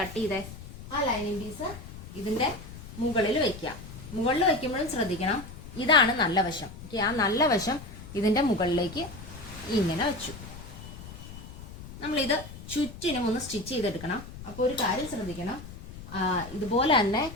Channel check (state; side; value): noise; left; rumble, 14 dB below the sound